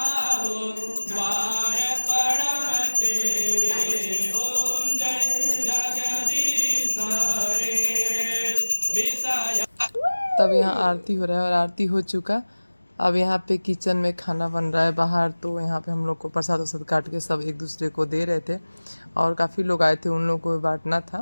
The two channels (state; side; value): inverted; both; correlation -1.00